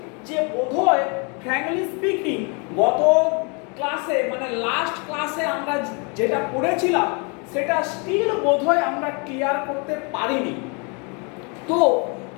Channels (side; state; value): right; quieter; 33.6 dB